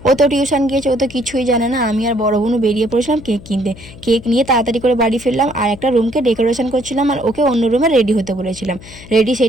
ও তো টিউশন গিয়েছে, ও তো কিছুই জানে না। আমি আর বড় বোনু বেরিয়ে পড়েছিলাম কেক কিনতে। কেক নিয়ে তাড়াতাড়ি করে বাড়ি ফিরলাম, আর একটা রুমকে ডেকোরেশন করছিলাম, আর ওকে অন্য রুমে রেডি হতে বলেছিলাম। রেডি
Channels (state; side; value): noise; left; hum, 18 dB below the sound